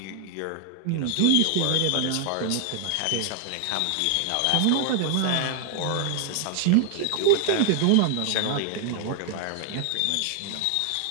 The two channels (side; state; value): both; different; correlation 0.00